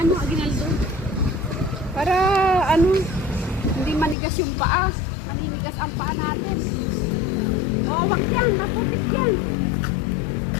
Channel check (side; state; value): right; drops out; at 4.2 s